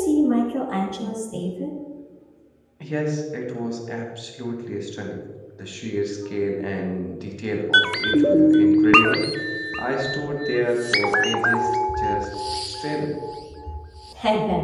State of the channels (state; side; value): identical; both; correlation 1.00